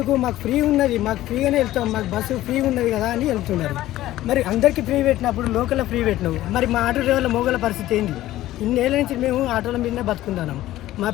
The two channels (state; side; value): quieter; right; 15.0 dB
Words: మాకు ఫ్రీ ఉన్నది, మాకు ఫ్రీగానే వెళ్తాం, మాకు బస్సు ఫ్రీ ఉన్నది కదా అని వెళ్తున్నారు. మరి అందరికీ ఫ్రీ పెట్టినప్పుడు లోకల్లో ఫ్రీ పెట్టినావు, మరి మా ఆటో డ్రైవర్ల మోగల పరిస్థితి ఏంటి? ఇన్నేళ్ళ నుంచి మేము ఆటోల మీదనే బతుకుంటున్నాం. మా